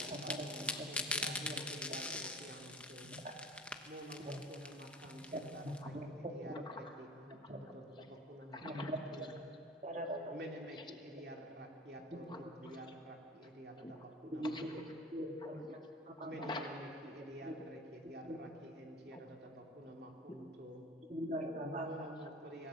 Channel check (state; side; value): normal; both; correlation 0.38